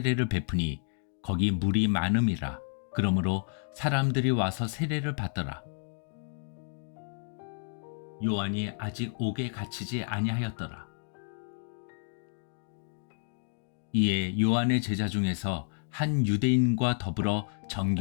베푸니 거기 물이 많음이라. 그러므로 사람들이 와서 세례를 받더라. 요한이 아직 옥에 갇히지 아니하였더라. 이에 요한의 제자 중에서 한 유대인과 더불어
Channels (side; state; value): right; silent; digital silence